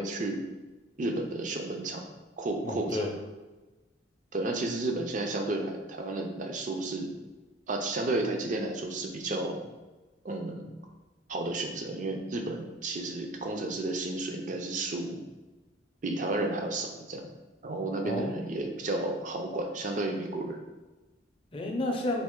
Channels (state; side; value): normal; both; correlation 0.42